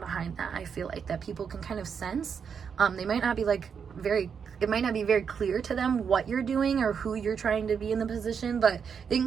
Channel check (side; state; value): left; quieter; 6.7 dB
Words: that. I feel like that people can kind of sense. They might not be it might not be very clear to them what you're doing or who you're trying to be in the position, but they